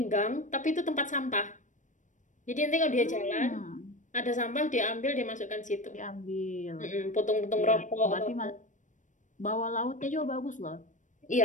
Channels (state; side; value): late; right; 0.37 ms